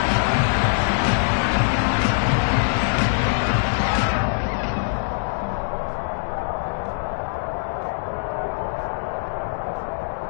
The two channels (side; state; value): right; silent; digital silence